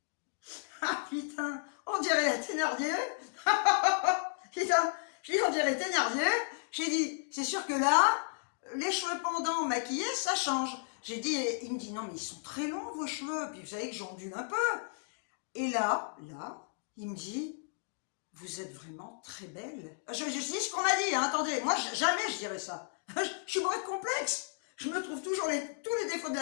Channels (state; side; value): silent; right; digital silence